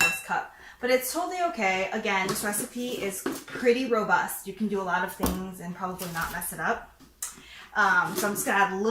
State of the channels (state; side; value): identical; both; correlation 1.00